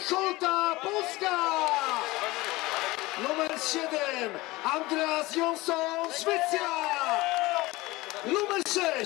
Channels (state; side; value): quieter; right; 20.6 dB